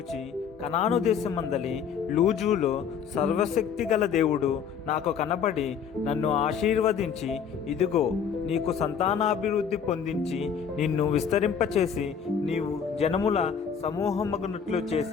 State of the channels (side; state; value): right; quieter; 7.1 dB